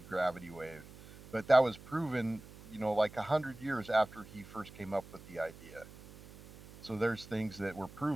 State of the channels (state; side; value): noise; right; hum, 18 dB below the sound